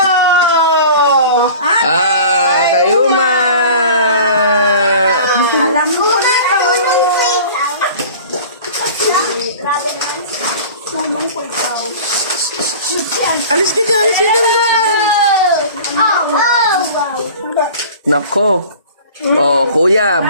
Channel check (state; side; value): inverted; both; correlation -0.41